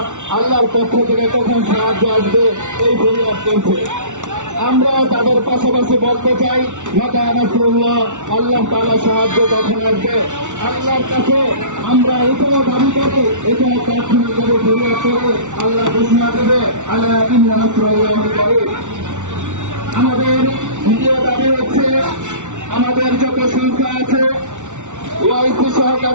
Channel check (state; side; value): late; left; 0.85 ms